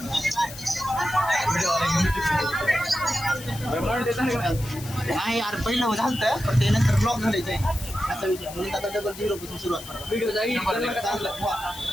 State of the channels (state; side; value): noise; left; hiss, 14 dB below the sound